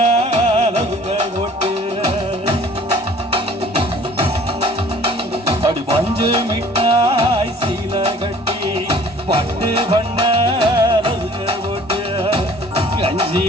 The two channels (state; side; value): normal; both; correlation 0.52